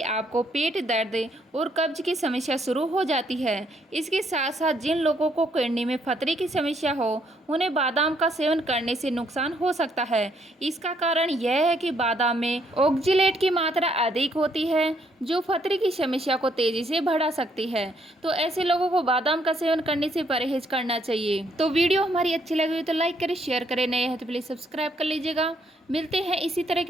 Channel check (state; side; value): normal; both; correlation 0.71